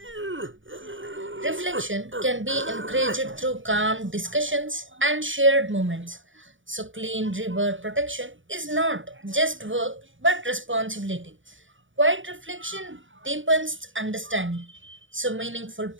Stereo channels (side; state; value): left; late; 0.56 ms